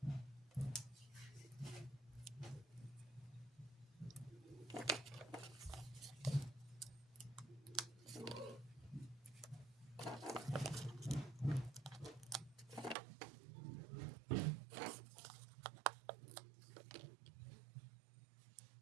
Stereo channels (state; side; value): drops out; left; at 13.0 s